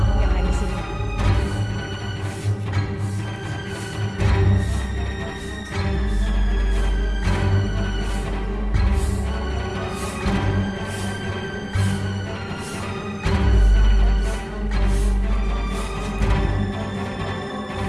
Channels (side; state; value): both; identical; correlation 1.00